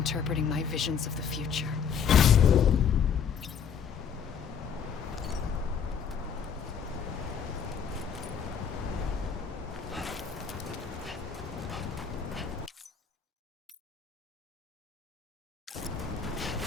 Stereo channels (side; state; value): right; quieter; 7.2 dB